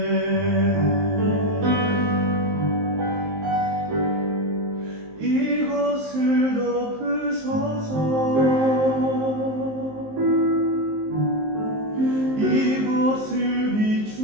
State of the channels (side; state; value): left; late; 19 ms